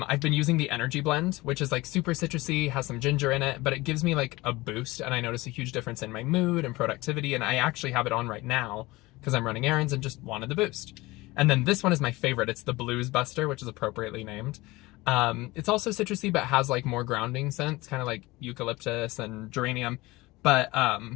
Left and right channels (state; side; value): quieter; right; 20.8 dB